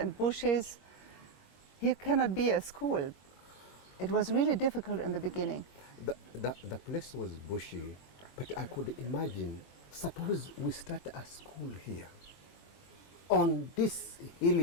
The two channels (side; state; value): right; late; 21 ms